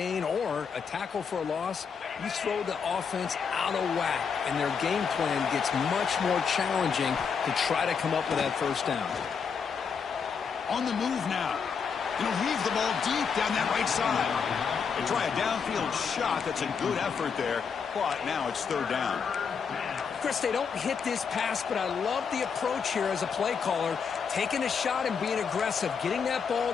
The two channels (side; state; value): right; quieter; 6.2 dB